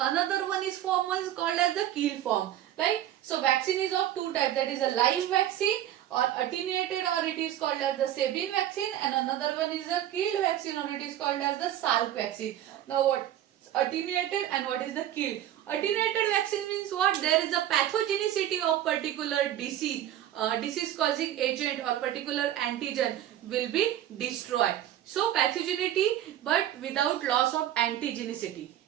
one is called as the kill form. Right? So vaccine is of two types, that is a live vaccine or attenuated, or it is called as the Sabin vaccine, and another one is a killed vaccine, or it is called as the Salk vaccine. Now what attenuated and what is the killed? Attenuated vaccine means what? There is a pathogenicity of particular disease causing agent or particular antigen will be destroyed. So pathogenicity but without loss of antigenicity.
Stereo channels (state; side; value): quieter; left; 12.2 dB